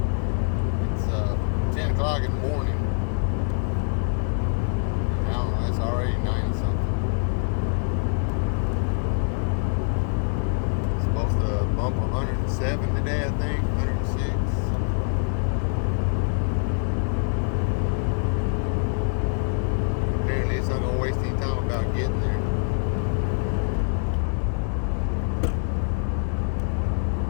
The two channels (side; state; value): right; silent; digital silence